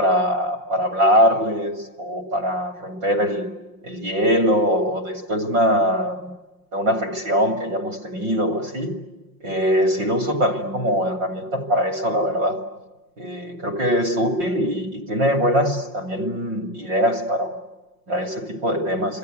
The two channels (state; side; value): late; left; 5.6 ms